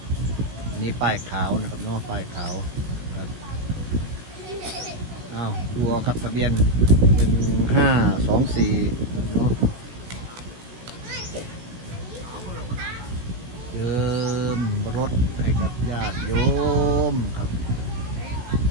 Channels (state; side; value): late; left; 17 ms